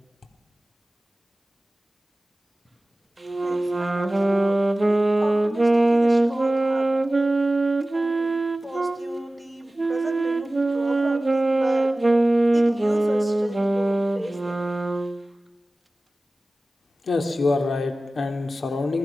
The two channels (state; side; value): normal; both; correlation 0.97